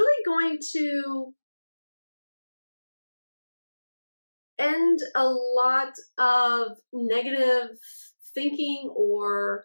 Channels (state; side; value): inverted; both; correlation -1.00